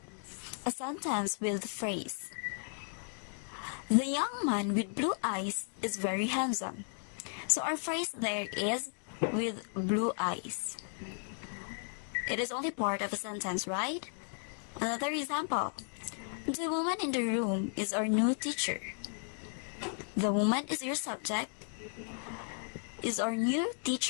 A sentence with phrase. The young man with blue eyes is very handsome. So our phrase there is with blue eyes. It is only part of a sentence, right? Another example. The woman in the room is our new teacher. The woman is your subject. Is our new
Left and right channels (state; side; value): silent; right; 54 dB below the other